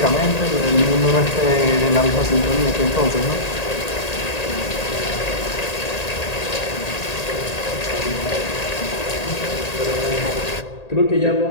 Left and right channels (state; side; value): late; right; 1.8 ms